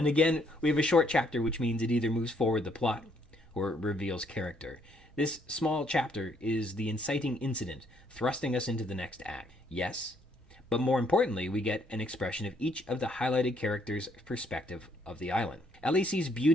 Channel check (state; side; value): normal; both; correlation 0.69